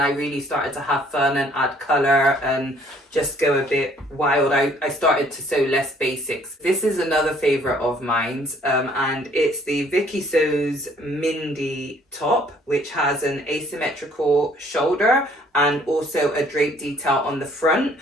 really started to have fun and add color and just go a bit wild. I started to sew less basics. This is another favorite of mine, and it's the Vikisews Mindy top, which has an asymmetrical shoulder and also a drape detail on the front.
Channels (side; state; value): both; normal; correlation 0.60